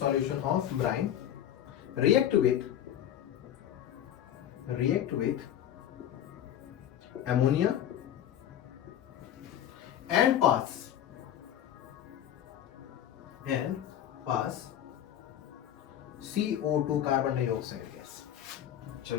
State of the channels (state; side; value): quieter; right; 10.8 dB